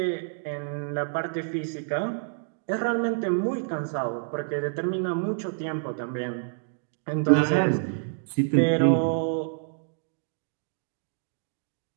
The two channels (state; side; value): silent; left; digital silence